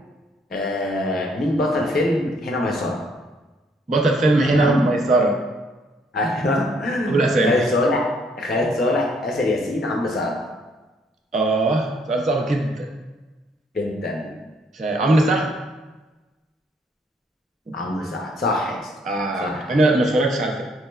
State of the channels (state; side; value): normal; both; correlation 0.67